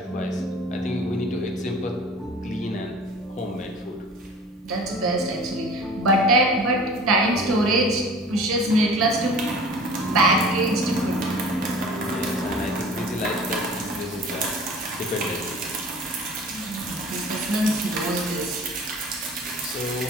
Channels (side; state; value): both; normal; correlation 0.43